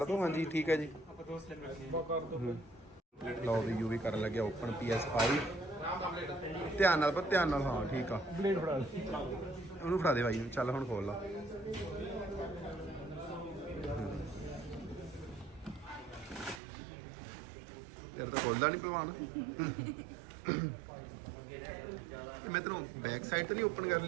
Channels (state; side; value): drops out; left; at 16.6 s